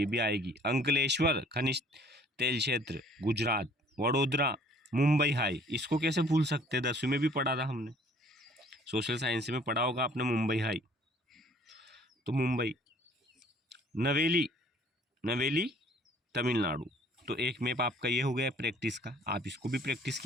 भी आएगी। अंकलेश्वर खनिज तेल क्षेत्र, गुजरात। वडोदरा, मुंबई हाई, इसको कैसे भूल सकते हैं, 10वीं में भी पढ़ा था हमने, सोशल साइंस में पढ़ा होगा आपने मुंबई हाई। तो मुंबई। नवेली, नवेली तमिलनाडु। तो एक मैप आपका ये हो गया प्रैक्टिस का, आप इसको भी प्रैक्टिस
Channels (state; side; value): normal; both; correlation 0.56